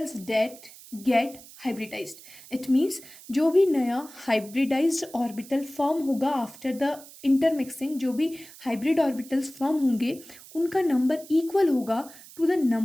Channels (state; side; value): noise; right; hiss, 19 dB below the sound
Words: that get hybridized. It means जो भी नया hybridized orbital form होगा after the intermixing, जो भी hybrid orbitals form होंगे, उनका नंबर equal होगा to the